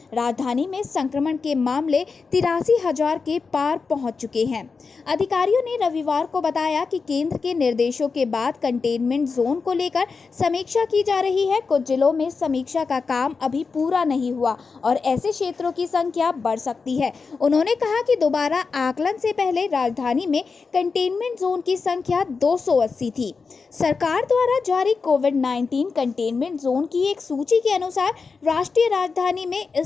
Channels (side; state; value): right; quieter; 4.8 dB